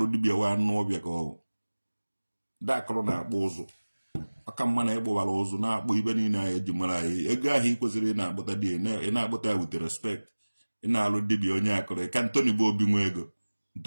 dibịa wa anụ ọbịa ka ọwụ ndị akụrụ na-akpụ ụzụ aka mma na ịgbụbara ụzụ na-akpụ ibe niile anyị eji mara anyị ego ahụ ị kwesịrị ị na-akpụta di ị na-akpụta ya wute respect ị na-alụ dibịa onye akụrụ ka Ntoni bụ obi nwe ego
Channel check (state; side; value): inverted; both; correlation -1.00